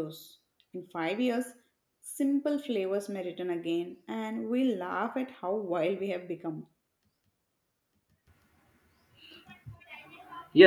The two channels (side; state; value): both; identical; correlation 1.00